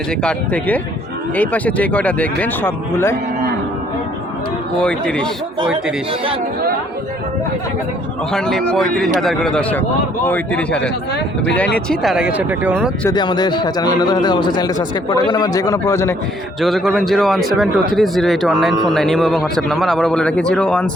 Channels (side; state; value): both; normal; correlation 0.64